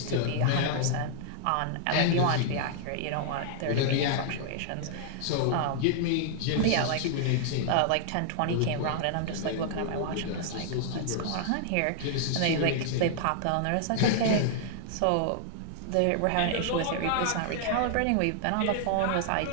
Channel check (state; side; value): different; both; correlation -0.01